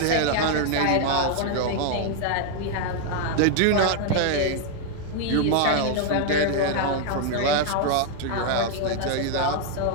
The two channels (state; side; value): different; both; correlation 0.00